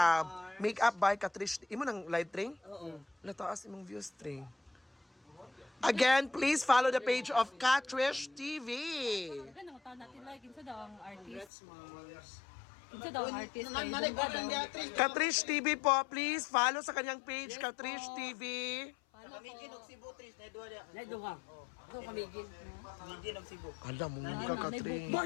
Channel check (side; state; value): right; drops out; at 11.5 s